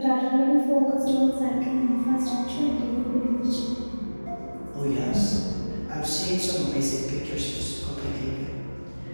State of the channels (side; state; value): both; inverted; correlation -1.00